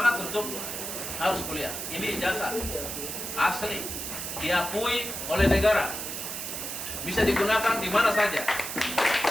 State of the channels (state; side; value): noise; right; hiss, 5 dB below the sound